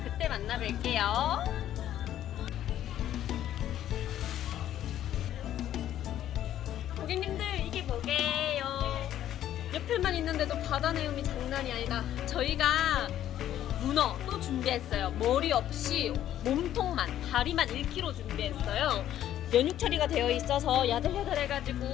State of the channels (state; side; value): quieter; right; 11.8 dB